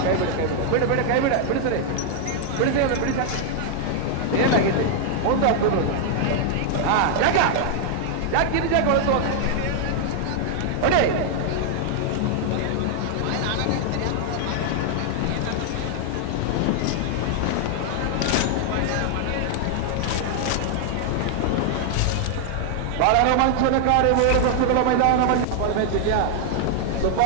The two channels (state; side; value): different; both; correlation 0.00